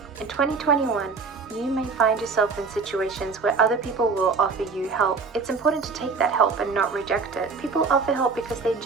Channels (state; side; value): quieter; left; 4.7 dB